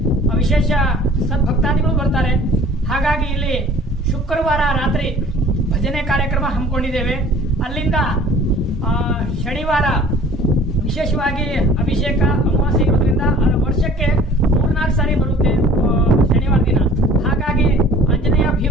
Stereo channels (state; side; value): normal; both; correlation 0.49